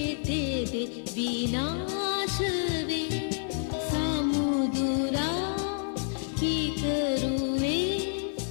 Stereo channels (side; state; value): right; silent; 58 dB below the other